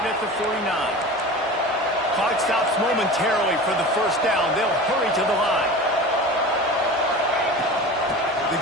at the 49. Clock stops momentarily for the first down. They'll hurry to the line. The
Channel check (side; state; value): both; normal; correlation 0.34